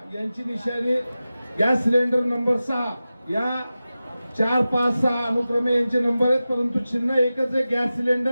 यांची निशाणी गॅस सिलेंडर नंबर 6. या 4, 5, 6 अनुक्रमे यांचे नंबर आहेत, परंतु चिन्ह एकच आहे, गॅस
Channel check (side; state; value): both; inverted; correlation -0.94